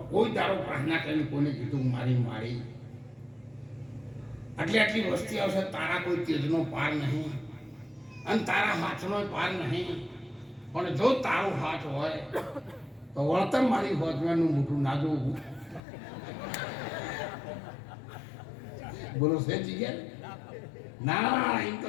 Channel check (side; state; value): right; drops out; at 15.8 s